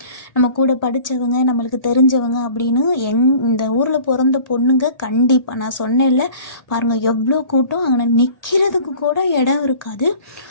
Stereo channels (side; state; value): right; late; 1.8 ms